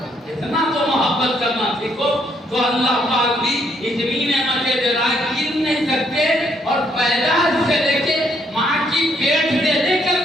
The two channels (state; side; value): normal; both; correlation 0.71